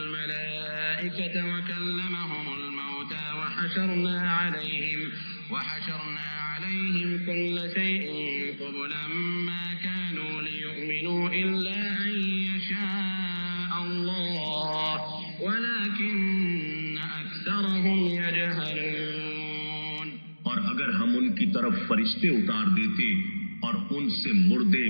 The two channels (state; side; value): inverted; both; correlation -1.00